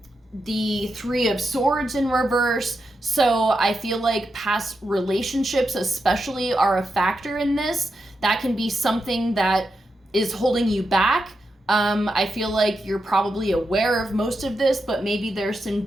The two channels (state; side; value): normal; both; correlation 0.87